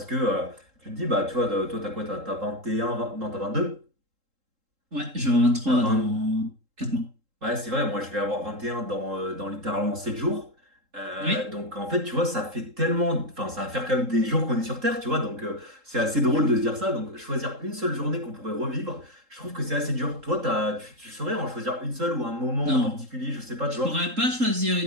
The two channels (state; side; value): late; left; 3.7 ms